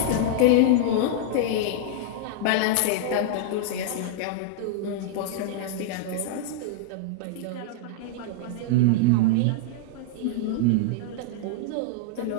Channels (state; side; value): different; both; correlation -0.01